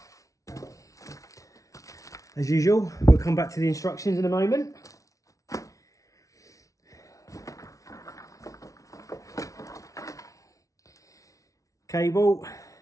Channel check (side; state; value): right; late; 0.16 ms